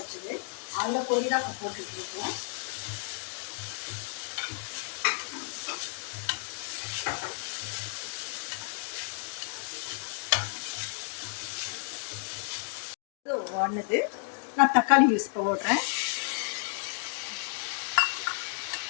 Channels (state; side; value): silent; right; 57 dB below the other